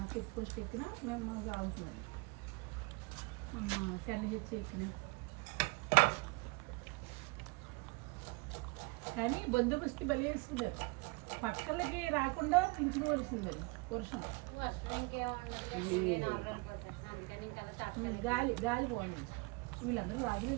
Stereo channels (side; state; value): left; quieter; 27.0 dB